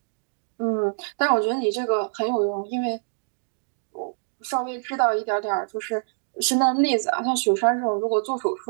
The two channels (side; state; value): left; silent; digital silence